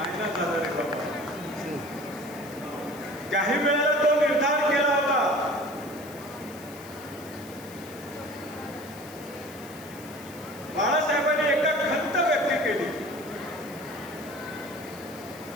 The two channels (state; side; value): noise; left; hiss, 19 dB below the sound